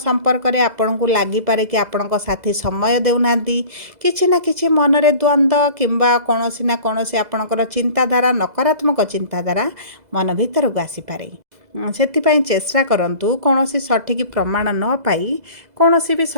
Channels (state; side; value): late; left; 2.0 ms